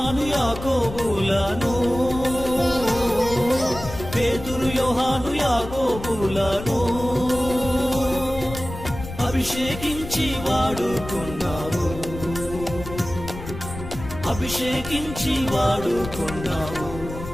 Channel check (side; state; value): left; noise; rumble, 11 dB below the sound